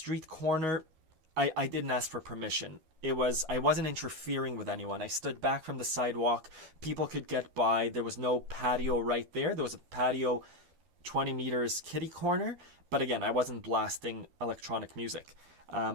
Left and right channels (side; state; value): left; late; 13 ms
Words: corner, I didn't ask for permission. I wasn't interfering with anyone. I stood back from the sidewalk. People could get by. There was no patio right there. There was a patio 20 meters kitty corner. But again, I wasn't blasting electronic music.